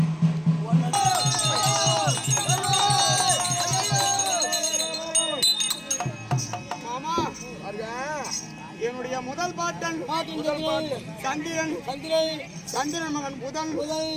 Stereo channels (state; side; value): identical; both; correlation 1.00